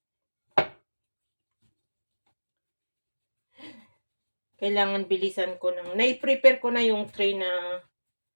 kailangan bilisan ko ng nai-prepare ko na yung tray na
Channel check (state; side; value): inverted; both; correlation -1.00